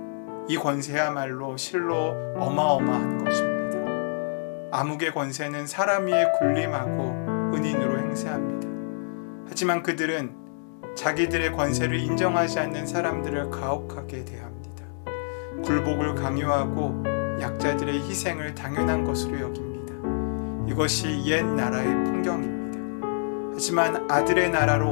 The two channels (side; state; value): right; silent; digital silence